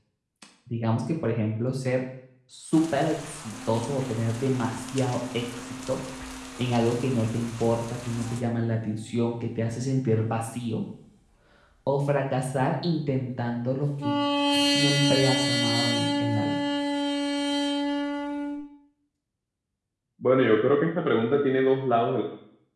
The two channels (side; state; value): both; identical; correlation 1.00